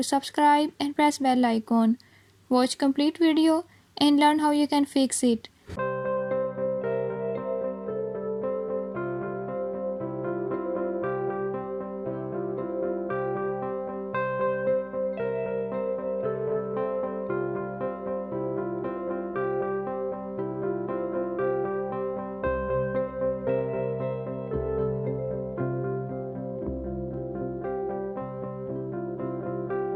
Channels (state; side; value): identical; both; correlation 1.00